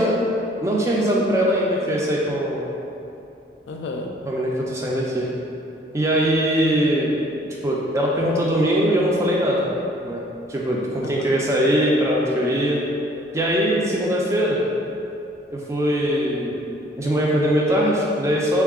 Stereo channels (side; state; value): both; normal; correlation 0.57